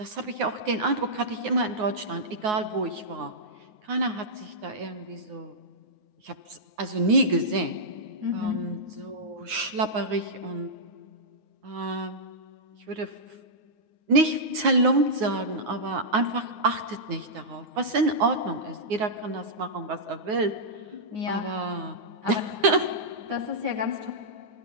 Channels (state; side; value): late; left; 9.4 ms